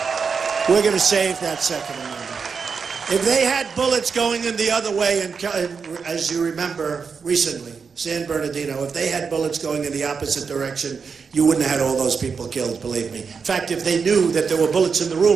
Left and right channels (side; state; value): left; quieter; 5.6 dB